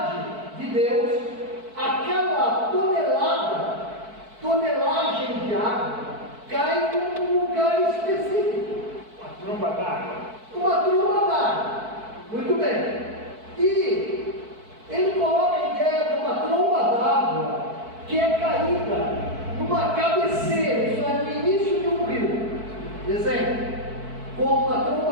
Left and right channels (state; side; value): late; left; 4.6 ms